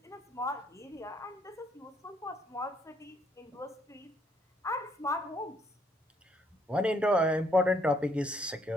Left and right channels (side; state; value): both; normal; correlation 0.69